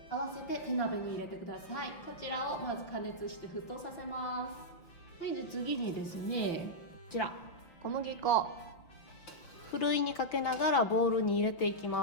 合わせて手鍋に入れてください。こちらをまず加熱して沸騰させます。で次にですね、こちら小麦粉ふるいにかけながらボウルに入れていき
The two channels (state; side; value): late; right; 5.6 ms